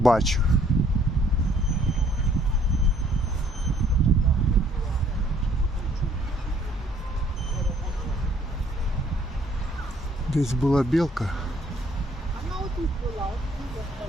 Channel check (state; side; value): normal; both; correlation 0.62